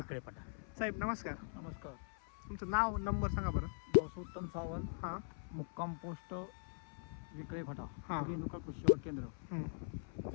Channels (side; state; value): right; silent; 50 dB below the other